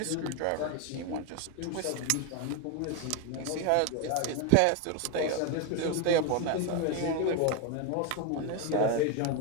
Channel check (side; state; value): both; different; correlation 0.01